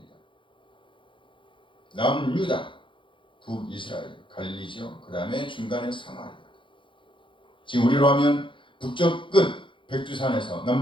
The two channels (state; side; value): late; right; 0.24 ms